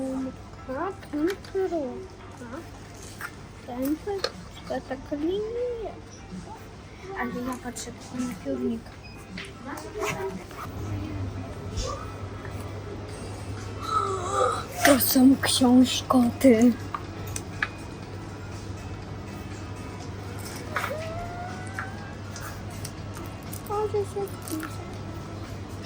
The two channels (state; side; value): identical; both; correlation 1.00